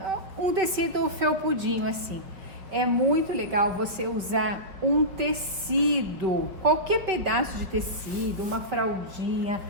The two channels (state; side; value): late; left; 5.3 ms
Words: um tecido felpudinho assim. É muito legal você usar um tecido, qualquer pedaço de tecido, uma fraldinha,